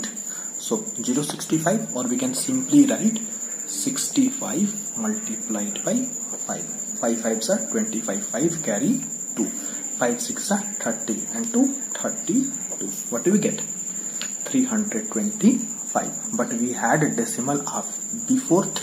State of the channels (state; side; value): identical; both; correlation 1.00